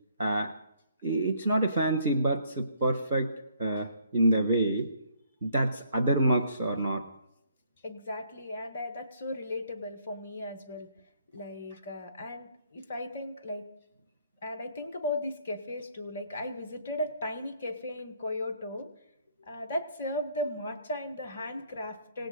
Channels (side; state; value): both; inverted; correlation -0.66